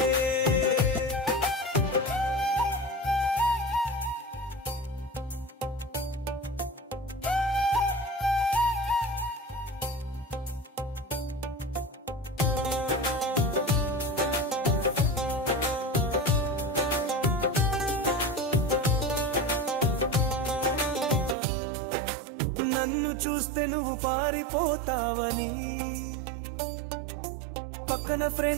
నన్ను చూస్తే నువ్వు పారిపోతావని పక్కన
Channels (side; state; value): left; drops out; at 21.4 s